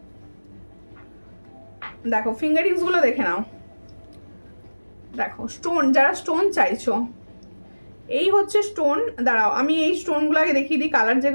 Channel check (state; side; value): inverted; both; correlation -1.00